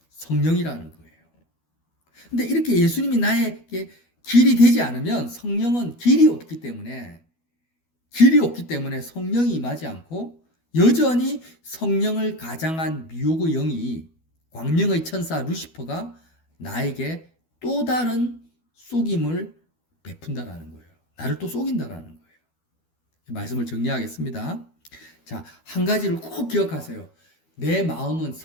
성령이라는 거예요. 근데 이렇게 예수님이 나에게 길이 되지 않으면 성령은 길이 없기 때문에 성령이 임하지 않고 여전히 성령을 가장한 미혹의 영이 광명의 천사 루시퍼가 나에게 또 다른 속임을 베푼다라는 거예요. 나를 또 속인다라는 거예요. 말씀을 정리하겠습니다. 자, 한 가지를 꼭 기억하세요. 내 마음은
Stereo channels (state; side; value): late; right; 12 ms